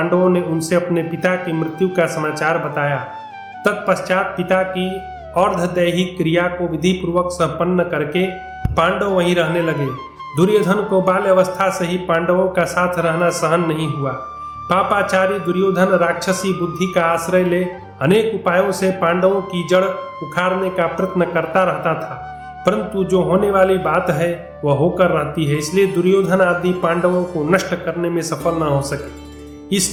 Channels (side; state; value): both; identical; correlation 1.00